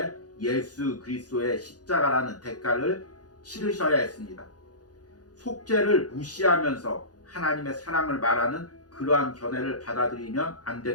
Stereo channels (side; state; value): right; late; 0.68 ms